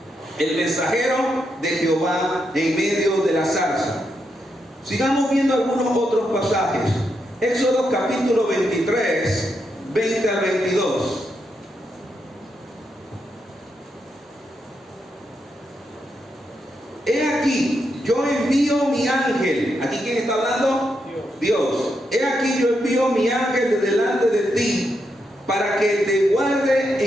el mensajero de Jehová en medio de la zarza. Sigamos viendo algunos otros pasajes. Éxodo capítulo 23, 20 al 22. He aquí, yo envío mi ángel. ¿Aquí quién está hablando? Dios. He aquí, yo envío mi ángel de delante de ti, para que te guarde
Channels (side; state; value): both; normal; correlation 0.82